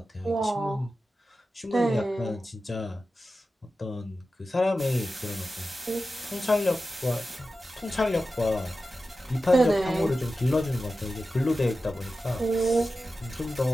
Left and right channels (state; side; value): normal; both; correlation 0.93